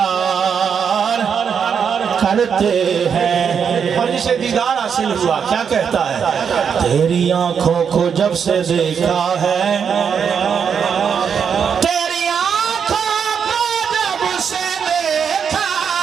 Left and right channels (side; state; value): left; quieter; 7.0 dB